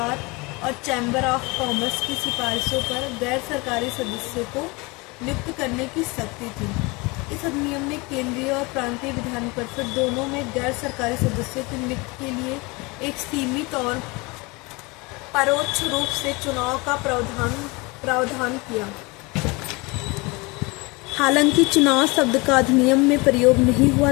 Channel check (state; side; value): quieter; right; 25.9 dB